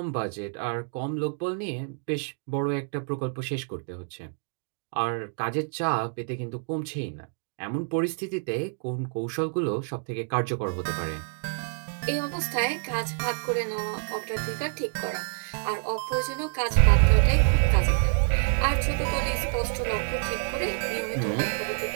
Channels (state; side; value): silent; left; digital silence